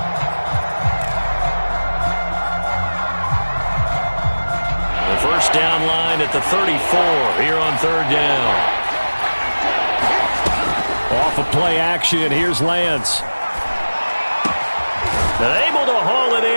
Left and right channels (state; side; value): inverted; both; correlation -1.00